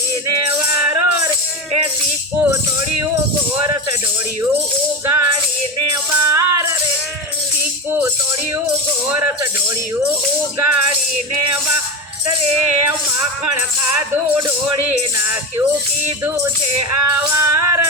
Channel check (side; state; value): both; normal; correlation 0.21